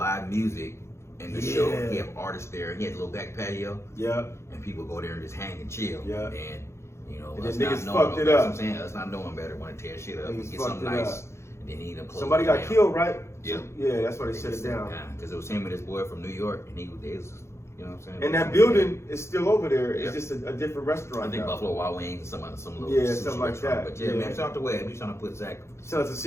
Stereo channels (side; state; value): right; late; 0.13 ms